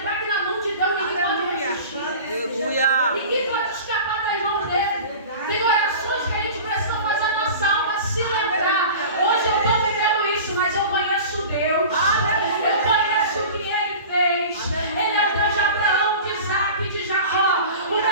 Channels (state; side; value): inverted; both; correlation -0.37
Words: que na mão de Deus ninguém pode Aleluia. resistir. Aleluia. Ninguém pode escapar das mãos dele. Tem orações que a gente precisa fazer a nossa alma se lembrar. Hoje eu estou vivendo isso, mas eu conheço Deus. Eu conheço o que Ele fez. Ele é o Deus de Abraão, de Isaac e de Jacó. O